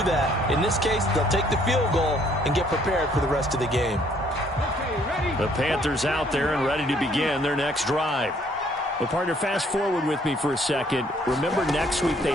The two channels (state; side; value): normal; both; correlation 0.64